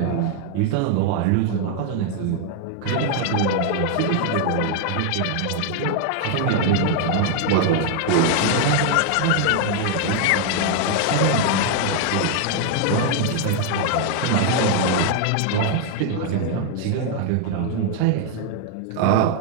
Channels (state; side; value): different; both; correlation 0.00